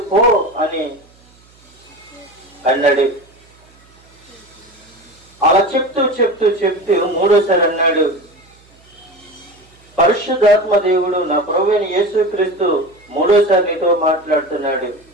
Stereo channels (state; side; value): noise; right; hum, 30 dB below the sound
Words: పో అని అన్నాడు. అలా చెప్తూ మూడోసారి అన్నాడు, పరిశుద్ధాత్మ దేవుడు నా ప్రభువైన యేసుక్రీస్తు మూడోసారి నీతో మాట్లాడుతున్నాడు.